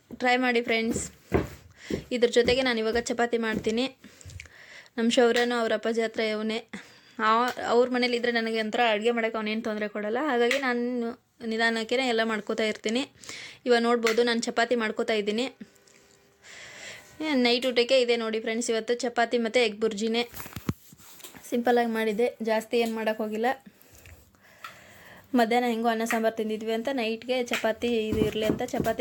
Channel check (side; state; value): both; identical; correlation 1.00